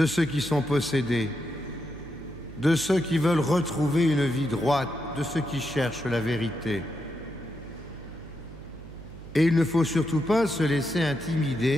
ceux qui sont possédés, de ceux qui veulent retrouver une vie droite, de ceux qui cherchent la vérité. Et il ne faut surtout pas se laisser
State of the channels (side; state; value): right; noise; hum, 15 dB below the sound